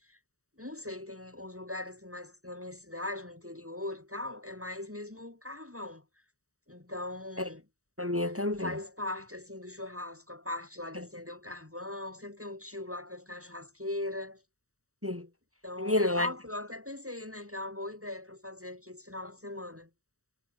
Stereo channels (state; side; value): late; left; 0.65 ms